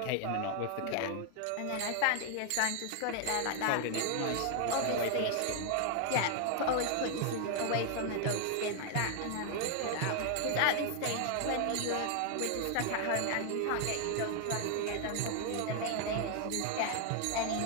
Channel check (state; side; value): different; both; correlation 0.00